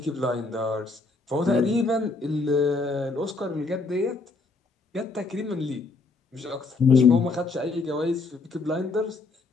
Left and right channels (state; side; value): quieter; right; 3.8 dB